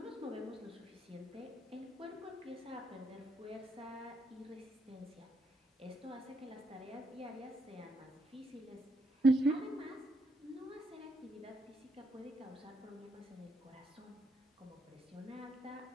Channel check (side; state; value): both; normal; correlation 0.77